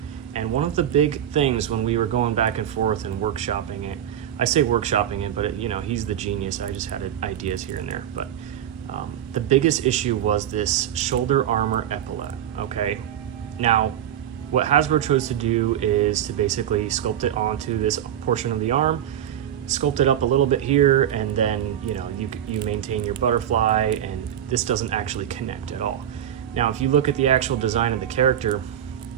And one of the big things when we were going back and forth and workshopping it, I say workshopping it, but it, you know, he's the genius. I just had ideas here and there. But the biggest issue was this shoulder armor epaulette, okay? Now, what Hasbro chose to do is to basically sculpt it onto this portion of the arm, sculpt it up a little bit here, and then, you know, you maintain your butterfly, and this doesn't actually connect at all. Now, if you look at the actual design of the character,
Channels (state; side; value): quieter; left; 10.4 dB